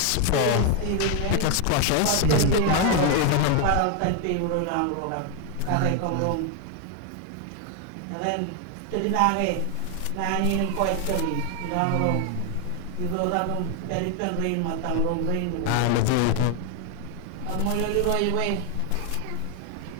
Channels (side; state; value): both; different; correlation 0.00